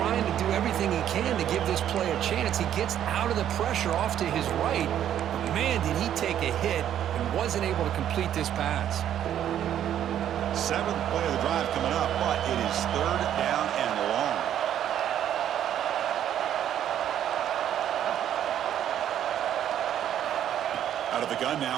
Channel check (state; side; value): quieter; left; 10.5 dB